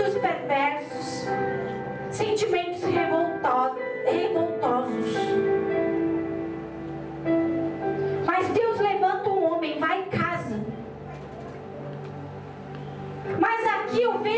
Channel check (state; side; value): identical; both; correlation 1.00